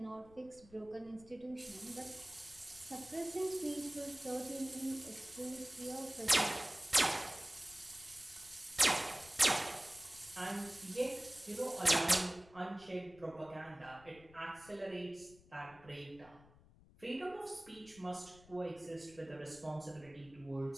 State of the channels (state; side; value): noise; left; rumble, 24 dB below the sound